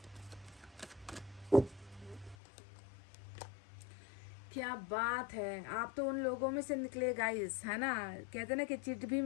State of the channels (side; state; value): right; drops out; at 2.4 s